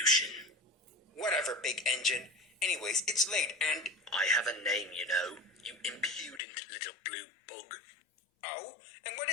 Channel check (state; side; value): drops out; right; at 6.4 s